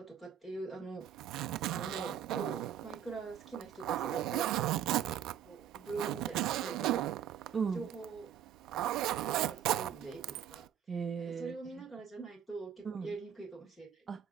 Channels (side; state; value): left; quieter; 9.4 dB